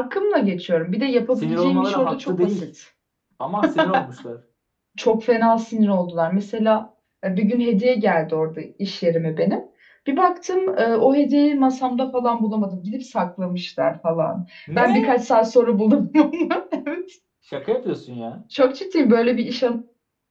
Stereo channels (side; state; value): both; identical; correlation 1.00